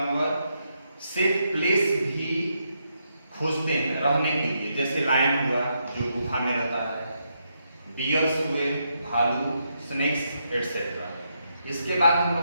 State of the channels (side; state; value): both; inverted; correlation -0.80